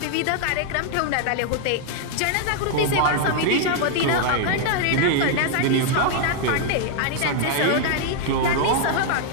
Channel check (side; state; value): both; different; correlation 0.00